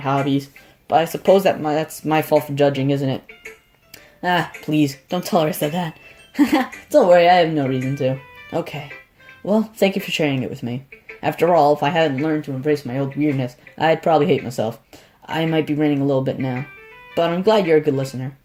But I suppose that's my fault for judging, isn't it? Ah, please, don't tell her I said that. Don't worry, I have no reason to. Okay. Well, thank you for sharing it with me. After all, if I hadn't learned to embrace my old weirdness, I'd probably hate myself. I might be ranting a little bit now. But I'm glad you're a good listener.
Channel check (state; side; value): identical; both; correlation 1.00